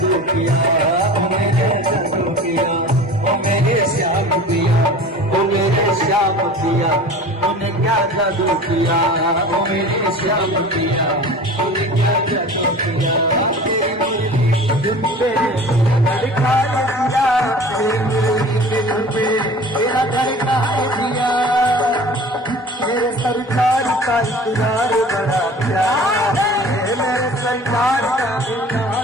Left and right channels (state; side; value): normal; both; correlation 0.41